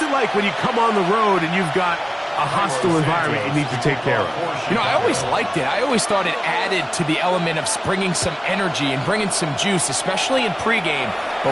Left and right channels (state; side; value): identical; both; correlation 1.00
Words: it like when you come on the road and you've got a hostile environment you need to take care of? You know, I always liked it. I always thought it added to the element of bringing some energy and bringing some juice, especially in pregame.